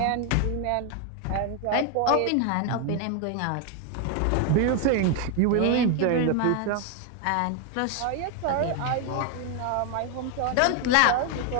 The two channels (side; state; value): both; different; correlation 0.01